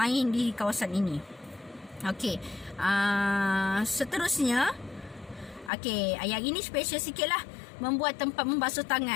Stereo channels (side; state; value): right; drops out; at 5.7 s